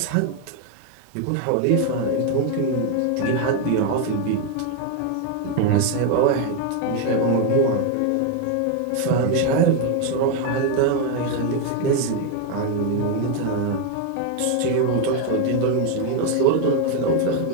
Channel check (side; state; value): both; different; correlation 0.01